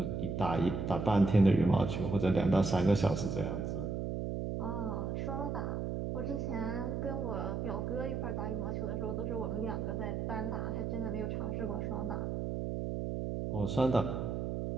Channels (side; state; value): right; noise; hum, 2 dB below the sound